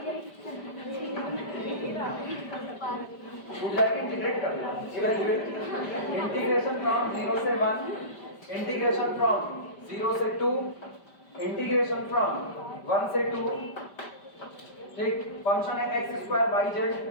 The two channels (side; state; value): right; late; 5.1 ms